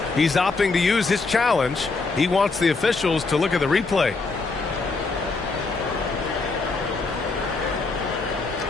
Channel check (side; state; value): right; quieter; 3.9 dB